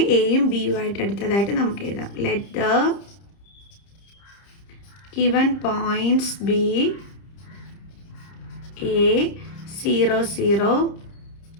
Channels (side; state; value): right; late; 30 ms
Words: എയും ബിയും ആയിട്ട് എടുത്തതായിട്ട് നമുക്ക് എഴുതാം. Let the given points B A 00,